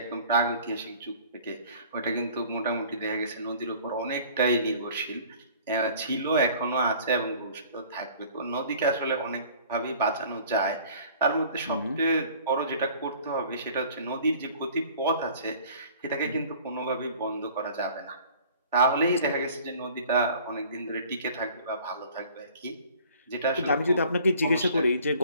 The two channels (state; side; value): inverted; both; correlation -0.50